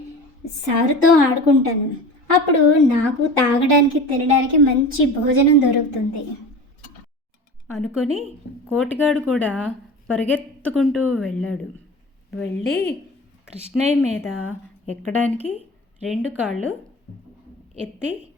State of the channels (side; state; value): both; normal; correlation 0.34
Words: సారుతో ఆడుకుంటాను. అప్పుడు నాకు తాగడానికి తినడానికి మంచి భోజనం దొరుకుతుంది అనుకొని కోటిగాడు కూడా పరిగెత్తుకుంటూ వెళ్ళాడు. వెళ్ళి కృష్ణయ్య మీద ఎక్కడానికి 2 కాళ్ళు ఎత్తి